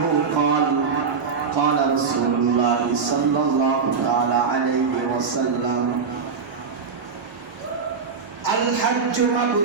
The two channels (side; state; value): left; quieter; 5.4 dB